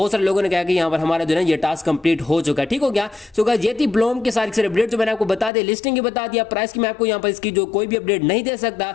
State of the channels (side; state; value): right; drops out; at 5.5 s